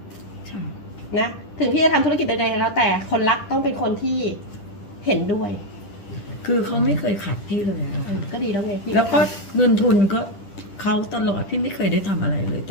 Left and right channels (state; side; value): late; right; 10 ms